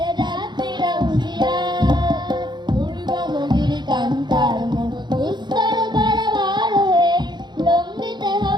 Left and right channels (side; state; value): left; late; 0.21 ms